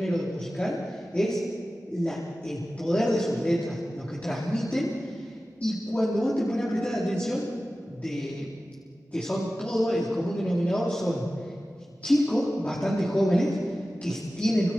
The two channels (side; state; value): both; normal; correlation 0.95